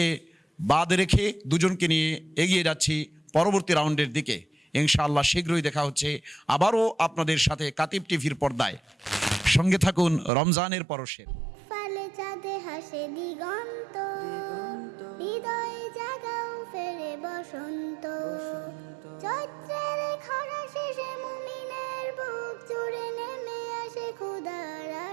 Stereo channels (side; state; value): left; drops out; at 10.3 s